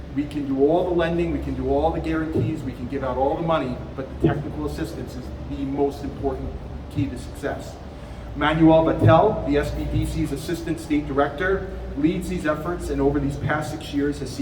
We can do all the lending, we can do all the guarantees, we can give out all the money, but the technical assistance is the most important key to success. Manuel Vattel, the SBDC's Assistant State Director, leads these efforts and over these past 6 years has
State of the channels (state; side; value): identical; both; correlation 1.00